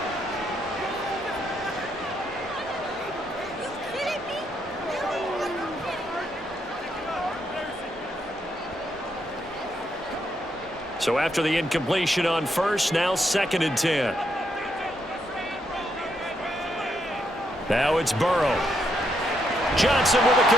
So after the incompletion on 1st, now 2nd and 10. Now it's Burrow. Johnson with a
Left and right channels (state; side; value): normal; both; correlation 0.78